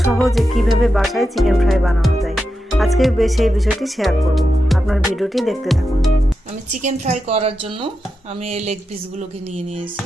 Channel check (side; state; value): both; normal; correlation 0.88